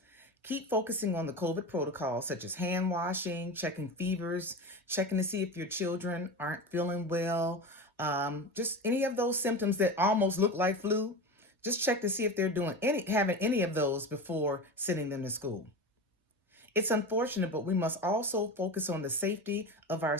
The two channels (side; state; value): both; normal; correlation 0.26